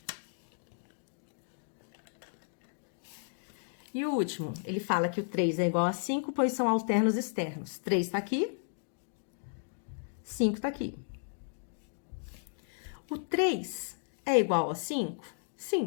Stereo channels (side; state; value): right; silent; digital silence